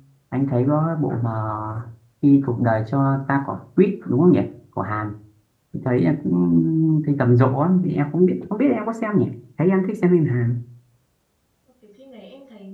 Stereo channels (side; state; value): both; identical; correlation 1.00